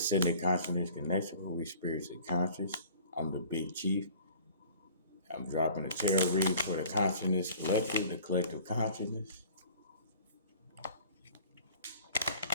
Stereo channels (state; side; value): inverted; both; correlation -0.48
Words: Consciousness Connection, where we spiritually conscious. I'm the Big Chief. I'm dropping a tarot read for the Consciousness Collective, the collective consciousness.